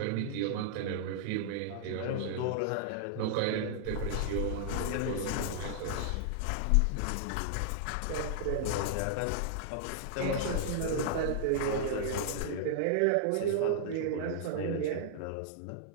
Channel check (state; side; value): different; both; correlation -0.01